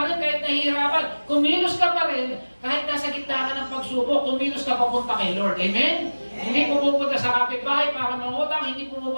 rin kahit nahihirapan, kumilos ka pa rin kahit nasa gitna ka ng pagsubok, kumilos ka papunta kay Lord. Amen? Hindi pumupunta sa kapitbahay para mangutang, hindi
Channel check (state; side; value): inverted; both; correlation -1.00